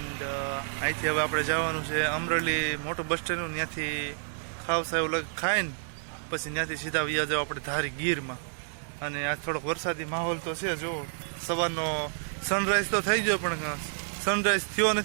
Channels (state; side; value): silent; left; 58 dB below the other